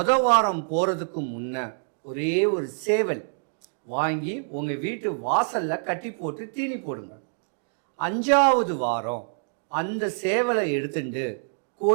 வாரம் போகிறதுக்கு முன்ன ஒரே ஒரு சேவல் வாங்கி உங்கள் வீட்டு வாசலில் கட்டி போட்டு தீனி போடுங்க. 5ஆவது வாரம் அந்த சேவலை எடுத்துட்டு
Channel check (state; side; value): silent; left; digital silence